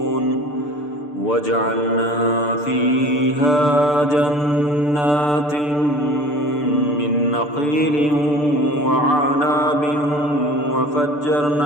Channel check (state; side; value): late; right; 6.8 ms